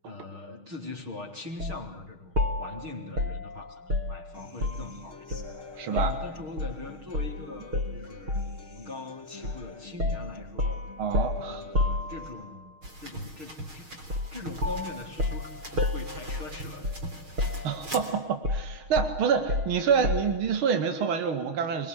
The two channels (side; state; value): left; late; 6.4 ms